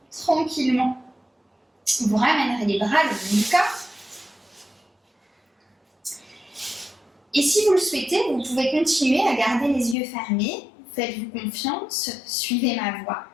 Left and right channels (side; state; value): right; drops out; at 10.0 s